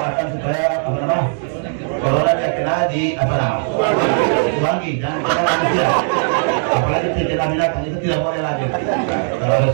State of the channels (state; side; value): silent; left; digital silence